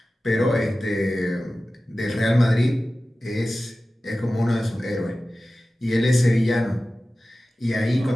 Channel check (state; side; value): normal; both; correlation 0.96